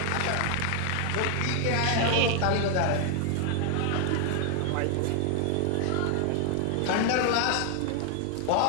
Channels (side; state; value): both; different; correlation 0.00